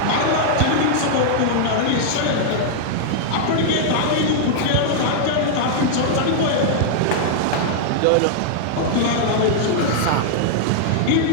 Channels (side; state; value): both; different; correlation -0.01